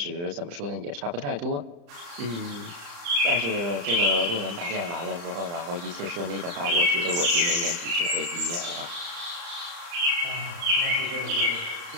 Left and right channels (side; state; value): left; late; 35 ms